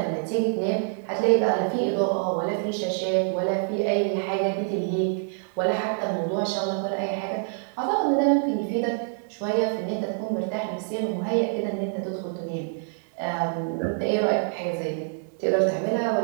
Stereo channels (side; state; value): left; silent; 61 dB below the other